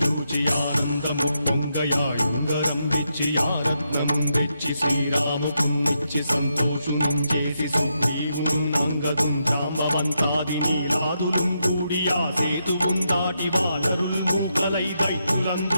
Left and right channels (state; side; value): inverted; both; correlation -0.82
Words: ఆనందము పొంగయాయుంగరం వెచ్చి ఆరత్నం వెచ్చి శ్రీరాముకున్నిచ్చి సంతోషును చేసి సుగ్రీవును అంగదుం జాంబవంతాది నీలాదులుం కూడి ఆ సేతువుం దాటి వానరులు మూకలై